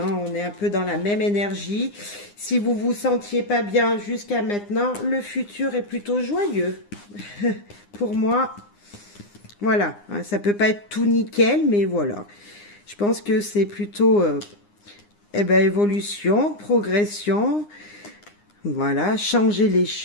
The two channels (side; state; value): right; late; 9.8 ms